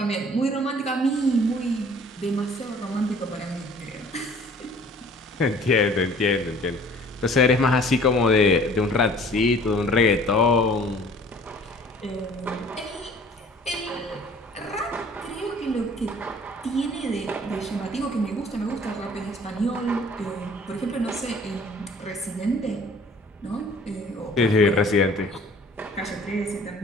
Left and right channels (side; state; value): both; normal; correlation 0.52